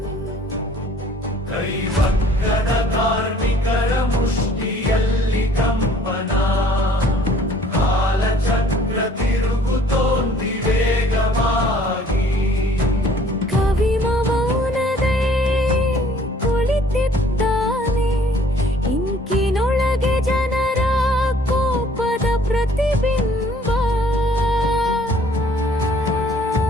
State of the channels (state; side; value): normal; both; correlation 0.56